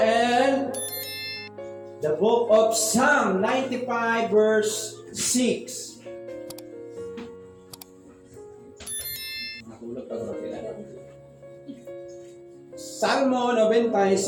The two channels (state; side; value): identical; both; correlation 1.00